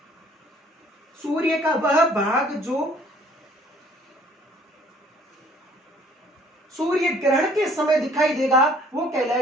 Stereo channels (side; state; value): both; normal; correlation 0.58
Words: सूर्य का वह भाग जो सूर्य ग्रहण के समय दिखाई देगा वो